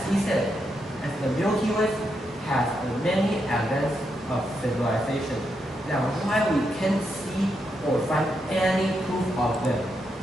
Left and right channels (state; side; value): normal; both; correlation 0.82